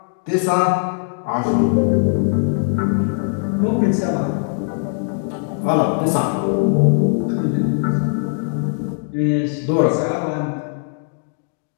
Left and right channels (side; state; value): right; silent; digital silence